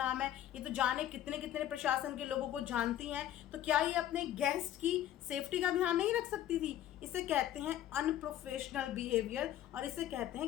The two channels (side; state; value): right; quieter; 12.1 dB